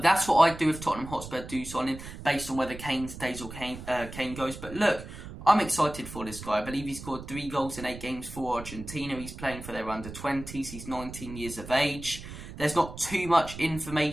that's what I'd do if Tottenham Hotspur do sign him, based on whether Kane stays or Kane goes. But look, I'm excited for this guy. I believe he scored 3 goals in 8 games for Argentina. He's playing for their under-20s. He's 19 years of age. There's not too much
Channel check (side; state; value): right; noise; rumble, 12 dB below the sound